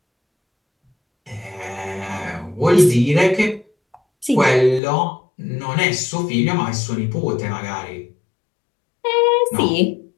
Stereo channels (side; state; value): right; drops out; at 4.8 s